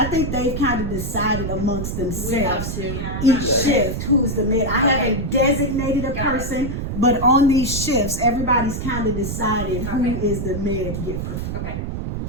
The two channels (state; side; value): noise; right; rumble, 4 dB below the sound